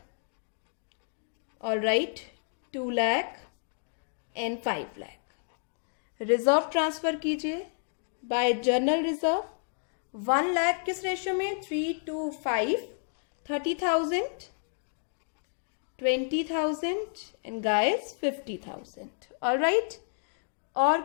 Alright, 2 lakh and 5 lakh. Reserve transfer कीजिए बाय जर्नल रिजर्व 1 लाख, किस रेशियो में, 3:5, 30,000। 20,000 एंड गाइस 50,000. ऑलराइट, और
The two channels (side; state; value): right; silent; digital silence